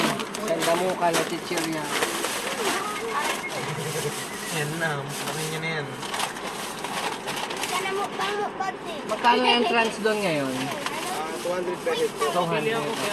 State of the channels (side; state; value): both; identical; correlation 1.00